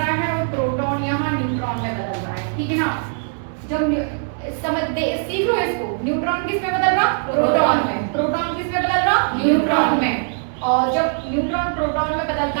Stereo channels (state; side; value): silent; left; 65 dB below the other